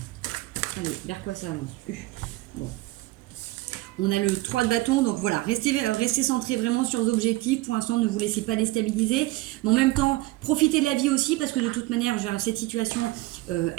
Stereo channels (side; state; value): left; quieter; 19.3 dB